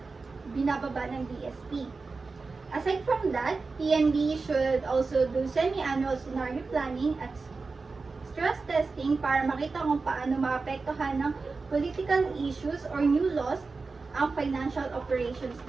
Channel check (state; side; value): quieter; left; 4.1 dB